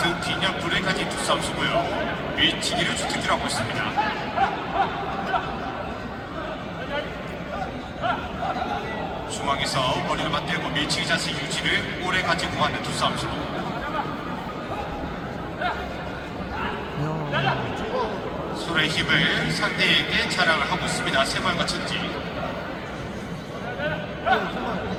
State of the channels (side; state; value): both; identical; correlation 1.00